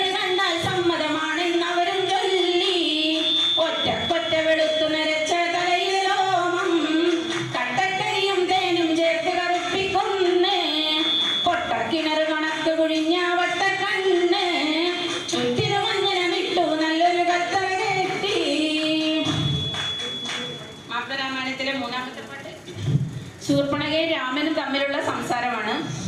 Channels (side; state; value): both; identical; correlation 1.00